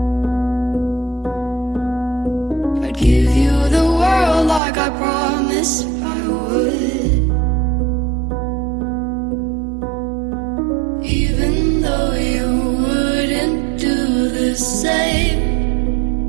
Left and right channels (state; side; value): drops out; left; at 4.6 s